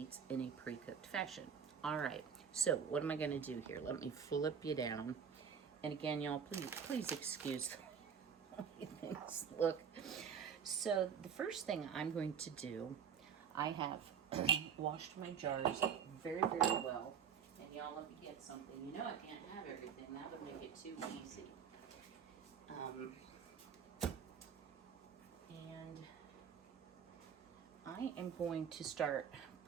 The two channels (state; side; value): quieter; left; 7.3 dB